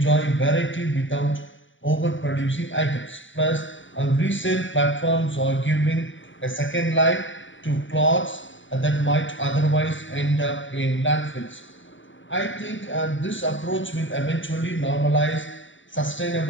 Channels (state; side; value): late; right; 0.55 ms